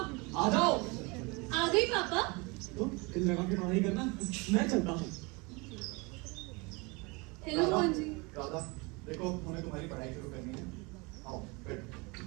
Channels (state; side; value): quieter; left; 27.2 dB